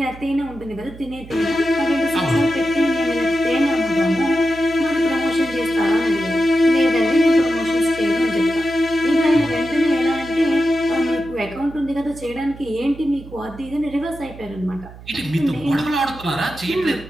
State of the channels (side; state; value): right; noise; hum, 17 dB below the sound